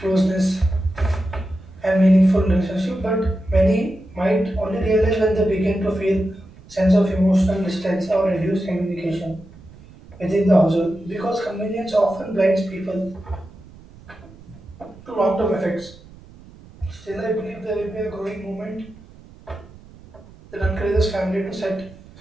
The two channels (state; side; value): noise; right; rumble, 22 dB below the sound